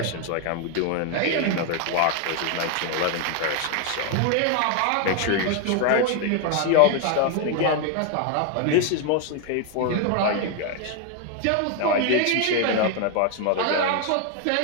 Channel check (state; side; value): different; both; correlation 0.01